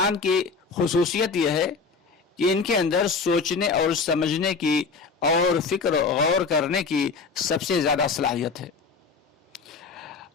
کی خصوصیت یہ ہے کہ ان کے اندر سوچنے اور سمجھنے کی اور فکر غور کرنے کی سب سے زیادہ صلاحیت ہے،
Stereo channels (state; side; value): quieter; right; 4.7 dB